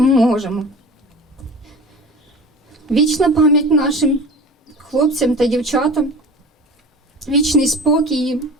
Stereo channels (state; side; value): normal; both; correlation 0.37